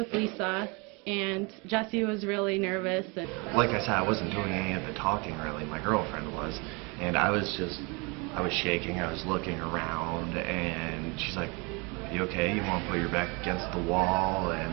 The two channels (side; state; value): left; quieter; 29.5 dB